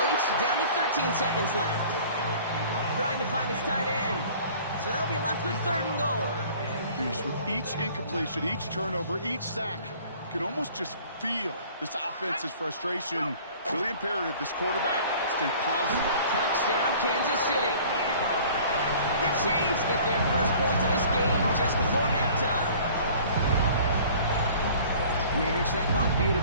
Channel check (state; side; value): inverted; both; correlation -0.49